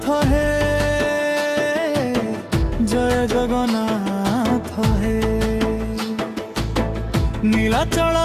হে, জয় জগন্নাথ হে। নীলাচল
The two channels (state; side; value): identical; both; correlation 1.00